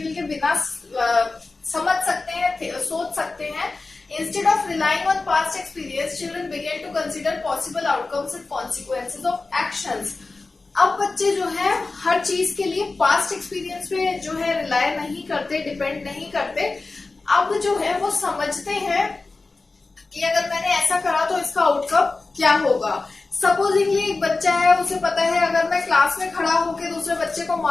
के बिना समझ सकते हैं, सोच सकते हैं। Instead of relying on past experience, children began to consider possible outcomes and consequences of actions. अब बच्चे जो है हर चीज के लिए पास्ट एक्सपीरियंस पे जो है रिलाय नहीं करते, डिपेंड नहीं करते। अब जो है वो समझते हैं कि अगर मैंने ऐसा करा तो इसका आउटकम क्या होगा। सपोजिंगली एक बच्चा है, उसे पता है अगर मैं क्लास में खड़ा होकर दूसरे बच्चे को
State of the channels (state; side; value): quieter; right; 3.6 dB